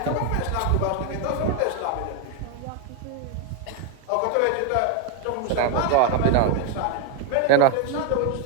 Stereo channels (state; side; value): different; both; correlation 0.01